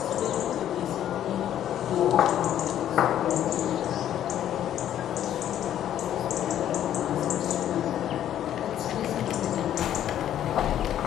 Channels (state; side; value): quieter; right; 11.1 dB